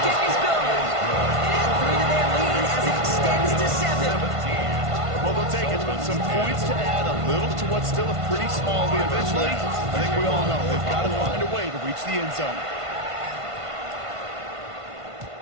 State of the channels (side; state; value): left; late; 1.5 ms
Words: is good. And add 3 to their lead as it extends to 7. Well, they'll take it. Some points to add a little to what's still a pretty small lead eventually. I think we all know they've got to find a way to reach the end zone.